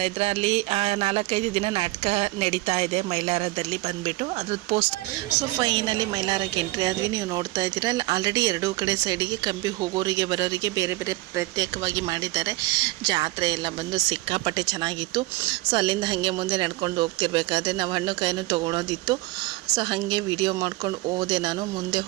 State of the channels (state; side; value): quieter; left; 20.0 dB